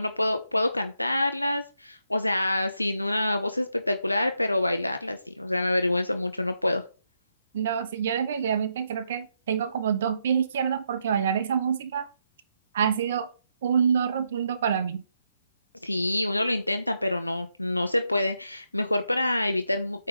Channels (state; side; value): inverted; both; correlation -0.81